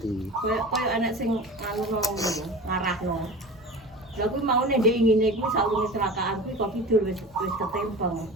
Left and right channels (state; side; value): normal; both; correlation 0.35